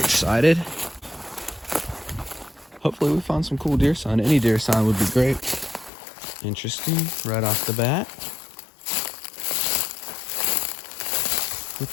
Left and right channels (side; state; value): right; drops out; at 5.9 s